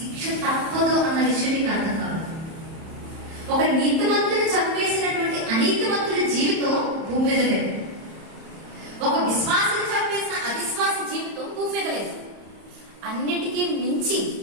తప్పదు అన్న విషయం మీకు అర్థం కావాలి. ఒక నీతిమంతుని చంపేసినటువంటి అనీతిమంతుడి జీవితం భూమి మీద లేదు. ఒక విశ్వాసం చంపేసిన అవిశ్వాస జీవితం భూమి మీద లేదు. అన్నిటికీ మించి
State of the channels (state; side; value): late; left; 31 ms